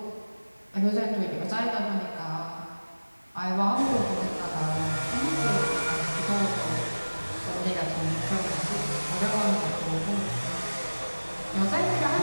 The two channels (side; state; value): both; inverted; correlation -1.00